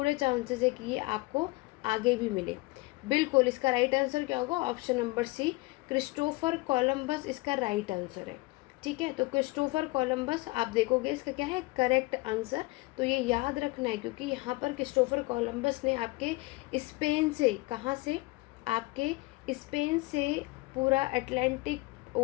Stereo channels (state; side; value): quieter; right; 23.0 dB